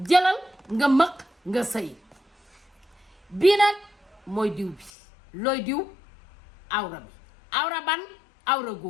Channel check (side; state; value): right; drops out; at 4.9 s